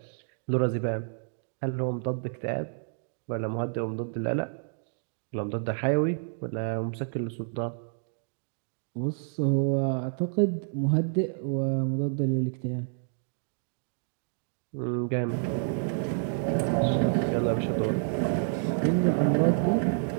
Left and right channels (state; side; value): silent; left; digital silence